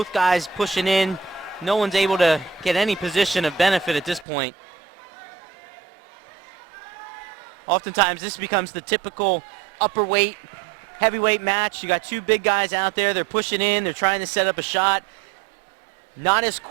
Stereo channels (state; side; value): drops out; left; at 4.2 s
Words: guys pushing in. No one's able to get any position of benefit at this point. Oftentimes this becomes the typical upper weight heavyweight match. You got 2 big guys out there. They're pushing in. They're trying to set up a shot. Not as